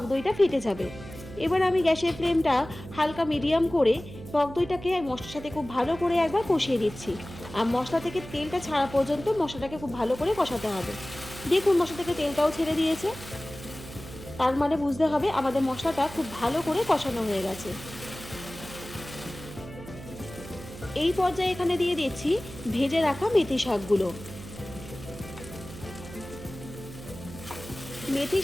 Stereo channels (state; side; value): noise; right; hum, 14 dB below the sound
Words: দইটা ফেটে যাবে। এবার আমি গ্যাসের ফ্লেমটা হালকা মিডিয়াম করে টক দইটাকে মশলার সাথে খুব ভালো করে একবার কষিয়ে দিচ্ছি। আর মশলা থেকে তেলটা ছাড়া পর্যন্ত মশলাটাকে খুব ভালো করে কষাতে হবে। দেখুন মশলা থেকে তেলটাও ছেড়ে দিয়েছে, তার মানে বুঝতে হবে আমাদের মশলাটা খুব ভালো করে কষানো হয়ে গেছে। এই পর্যায়ে এখানে দিয়ে দিচ্ছি ভেজে রাখা মেথি শাকগুলো। মেথি